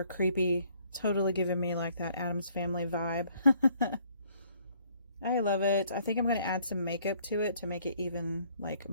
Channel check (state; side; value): inverted; both; correlation -0.63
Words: creepy. Totally giving me like that Addams Family vibe. I love it. I think I'm going to add some makeup to it to make it even like